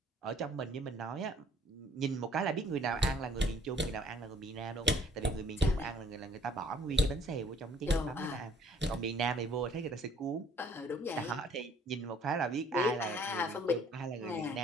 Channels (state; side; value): normal; both; correlation 0.59